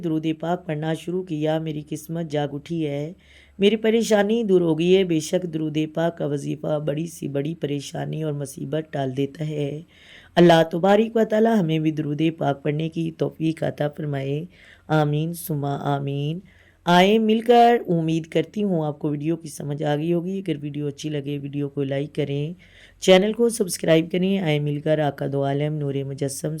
پاک پڑھنا شروع کیا میری قسمت جاگ اٹھی ہے، میری پریشانی دور ہو گئی ہے۔ بے شک درود پاک کا وظیفہ بڑی سی بڑی پریشانی اور مصیبت ٹال دیتا ہے۔ اللہ تبارک و تعالی ہمیں بھی درود پاک پڑھنے کی توفیق عطا فرمائے، آمین ثم آمین۔ آئیں مل کر، امید کرتی ہوں آپ کو ویڈیو کی سمجھ آ گئی ہوگی۔ اگر ویڈیو اچھی لگے ویڈیو کو لائک کریں، چینل کو سبسکرائب کریں۔ آئیں مل کر آقا دو عالم نور مجسم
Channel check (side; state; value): both; identical; correlation 1.00